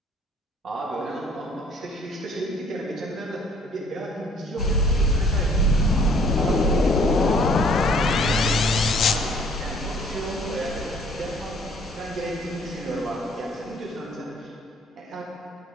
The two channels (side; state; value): both; normal; correlation 0.59